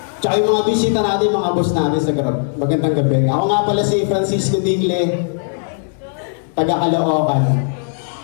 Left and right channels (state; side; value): silent; right; 68 dB below the other